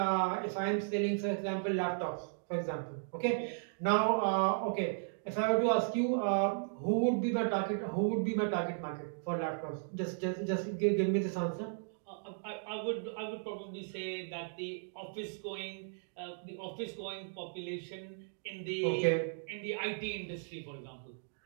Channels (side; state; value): left; silent; digital silence